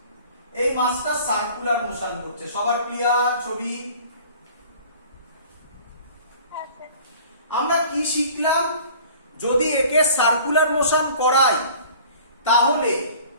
এই মাছটা সার্কুলার মোশন করছে। সবার ক্লিয়ার ছবি? হ্যাঁ স্যার। আমরা কি শিখলাম? যদি একে সার্কুলার মোশন করাই তাহলে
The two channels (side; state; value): both; inverted; correlation -0.47